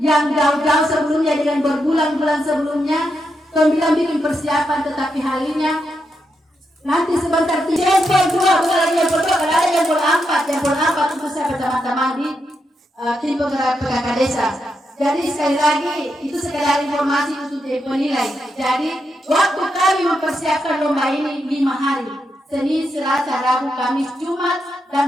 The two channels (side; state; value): both; normal; correlation 0.83